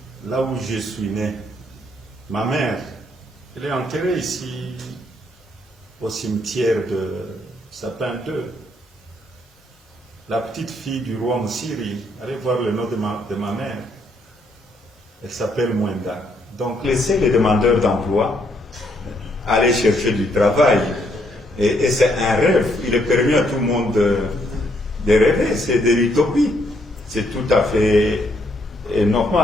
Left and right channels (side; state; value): both; normal; correlation 0.72